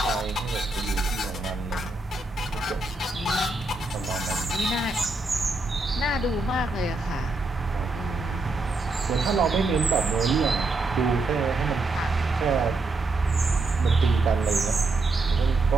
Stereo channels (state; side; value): quieter; left; 3.3 dB